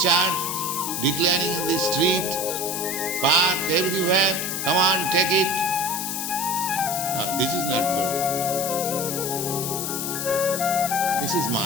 declaring in the street, park, everywhere, come on, take it. No, this is not good. This is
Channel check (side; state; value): left; noise; hiss, 3 dB below the sound